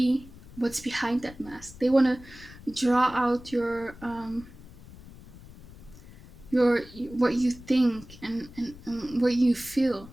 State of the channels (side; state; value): left; noise; rumble, 19 dB below the sound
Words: what's behind that mask. They wanna draw out your what you think and what you feel.